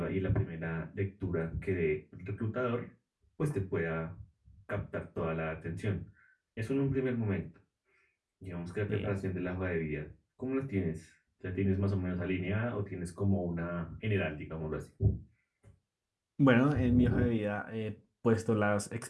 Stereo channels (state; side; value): identical; both; correlation 1.00